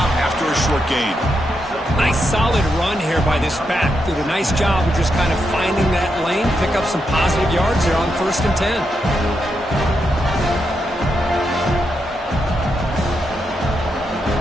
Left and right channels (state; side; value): normal; both; correlation 0.83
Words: after a short gain. Nice solid run here by this back. Did a nice job of just kind of finding that lane, pick up some positive yards there on 1st and 10.